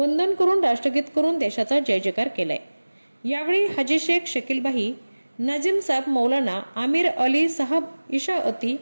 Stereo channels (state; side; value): inverted; both; correlation -1.00